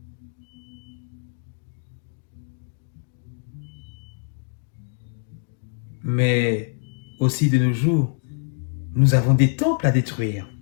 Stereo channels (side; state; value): right; silent; digital silence